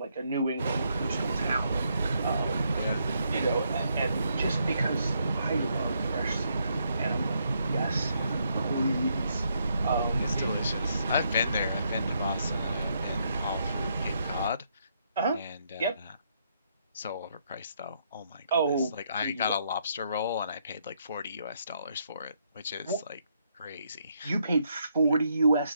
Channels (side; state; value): both; inverted; correlation -0.75